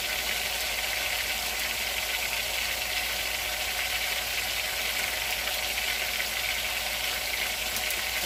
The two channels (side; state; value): both; identical; correlation 1.00